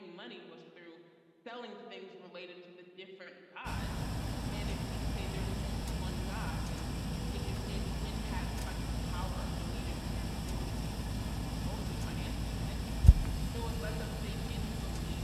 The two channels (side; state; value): both; identical; correlation 1.00